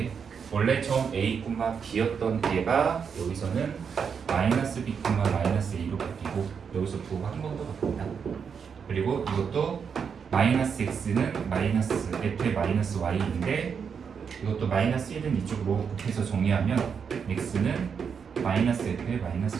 원래 점 a, b였던 얘가 여기서는 마이너스 b, 마이너스 a로 바뀌고 여기서 부호가 한 번 더 바뀐다. 그리고 이것도 마이너스 x는 마이너스 f의 마이너스 y인데 이것도 마이너스 1은 이쪽으로 곱해서 정리하면 x는 마이너스 f의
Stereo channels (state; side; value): quieter; left; 6.6 dB